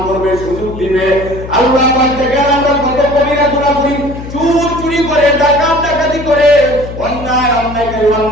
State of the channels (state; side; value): noise; left; hum, 11 dB below the sound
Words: করবে, সুযোগ দিবে। আল্লাহ পাক দেখেন আমরা কত কবিরা গুনাহ করি, চুরি করে, ডাকাতি করে,